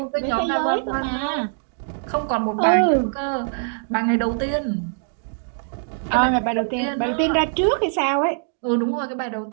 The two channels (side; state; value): left; silent; digital silence